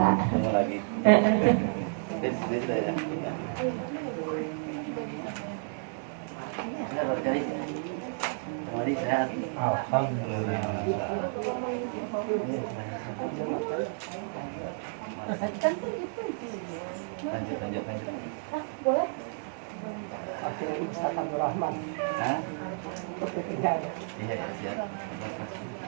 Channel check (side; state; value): left; silent; digital silence